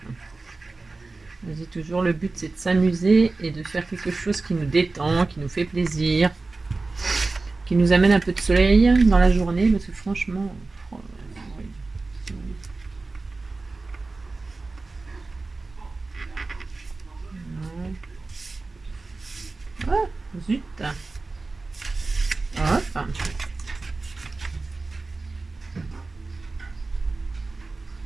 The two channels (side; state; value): left; quieter; 3.6 dB